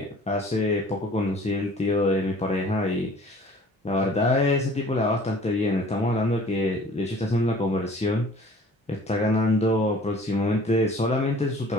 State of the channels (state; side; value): normal; both; correlation 0.50